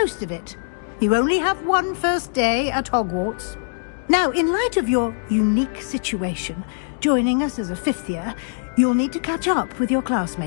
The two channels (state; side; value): silent; right; digital silence